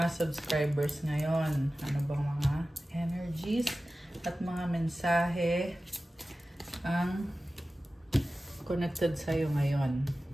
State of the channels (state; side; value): normal; both; correlation 0.95